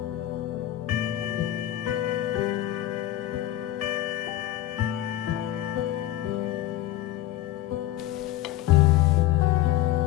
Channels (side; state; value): right; quieter; 13.9 dB